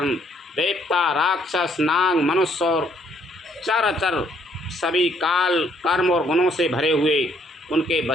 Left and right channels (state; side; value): normal; both; correlation 0.67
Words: देवता, राक्षस, नाग, मनुष्य और चराचर सभी काल, कर्म और गुणों से भरे हुए उनके